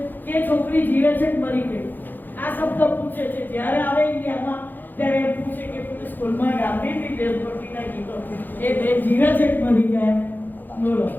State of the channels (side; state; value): right; late; 0.088 ms